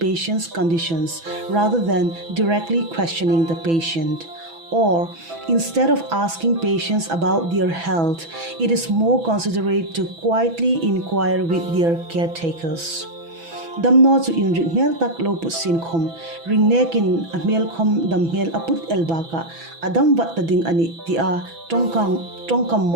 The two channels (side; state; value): left; late; 6.0 ms